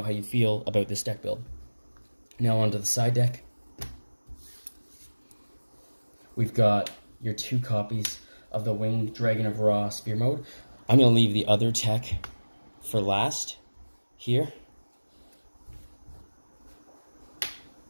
how you feel about this deck build. Now onto the side deck. We've got your 2 copies of the Winged Dragon of Ra Sphere Mode. I'm going to leave the other tech for last here.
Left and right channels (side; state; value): both; inverted; correlation -1.00